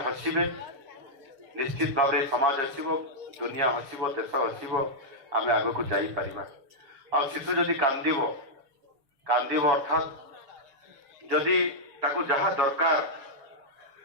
ହସିବେ, ନିଶ୍ଚିତ ଭାବରେ ସମାଜ ହସିବ, ଦୁନିଆ ହସିବ, ଦେଶ ହସିବ, ଆମେ ଆଗକୁ ଯାଇପାରିବା। ଆଉ ଶିଶୁ ଯଦି କାନ୍ଦିବ ଅର୍ଥାତ୍ ଯଦି ତାକୁ ଯାହା ଦରକାର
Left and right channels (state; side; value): late; left; 6.9 ms